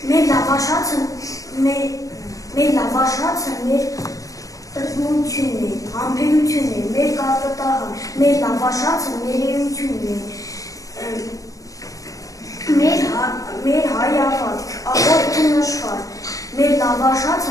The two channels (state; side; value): late; right; 0.16 ms